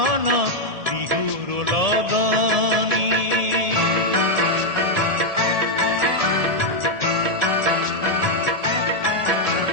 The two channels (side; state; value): left; late; 1.4 ms